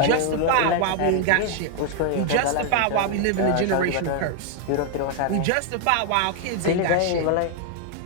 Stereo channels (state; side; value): different; both; correlation 0.00